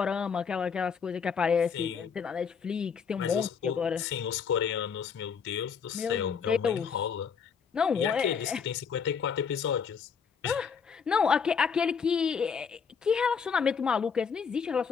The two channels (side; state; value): right; quieter; 6.3 dB